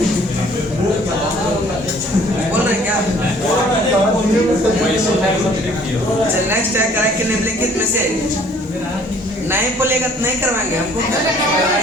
बोल रहे क्या? चल नेक्स्ट है, करेक्ट के निम्नलिखित में से नहीं बोलेगा तो नहीं करवाएंगे हमको।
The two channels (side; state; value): both; normal; correlation 0.56